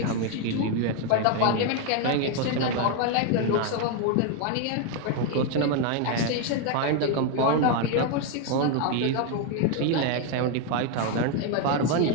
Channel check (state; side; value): different; both; correlation 0.01